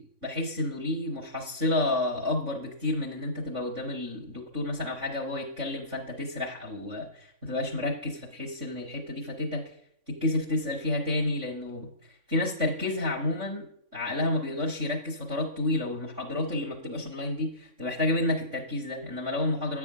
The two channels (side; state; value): left; late; 3.5 ms